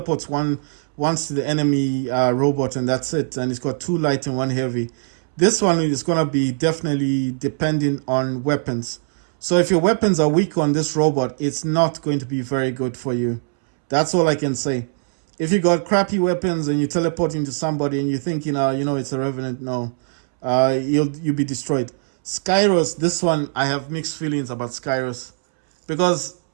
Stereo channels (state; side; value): silent; left; 65 dB below the other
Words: once to the enemy robot, and that's it. And he's got 2 light and 1 heavy. This one is going to be definitely depending on weapons. So if your weapons are weak on this robot, it's not going to be very good for you. That's all I can say. If you got crappy weapons and you teleport into somebody and you're thinking, it's a Revenant, no. You'll be destroyed. Skyros, this one, I have mixed feelings about Skyros. Because,